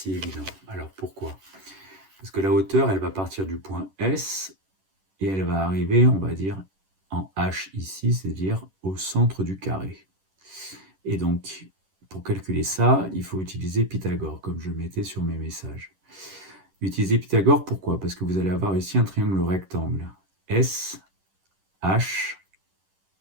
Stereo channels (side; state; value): left; late; 10 ms